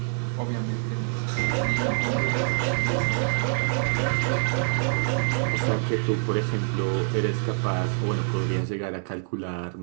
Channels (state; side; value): silent; left; 61 dB below the other